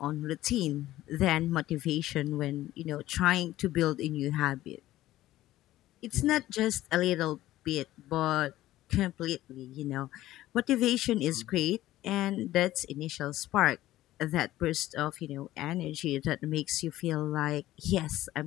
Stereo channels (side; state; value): right; quieter; 15.1 dB